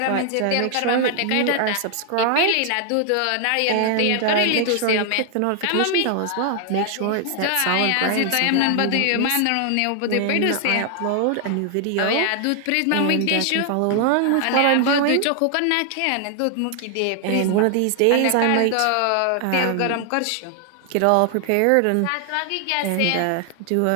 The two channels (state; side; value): different; both; correlation 0.00